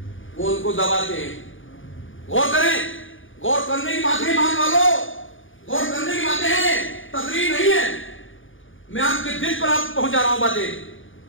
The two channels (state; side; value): late; right; 0.57 ms